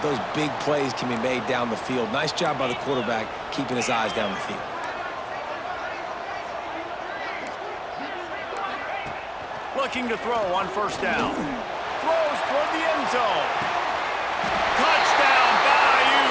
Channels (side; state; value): both; identical; correlation 1.00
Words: those big plays can be made down the field. Nice job by the quarterback keeping his eyes down the field. Looking to throw on first down. Throws toward the end zone. Touchdown, Bayou